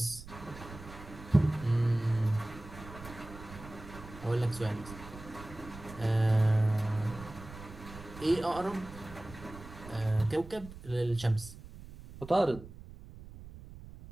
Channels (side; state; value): right; noise; rumble, 15 dB below the sound